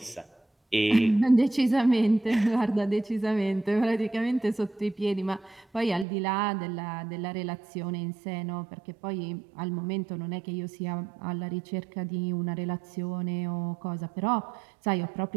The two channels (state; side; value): drops out; left; at 6.1 s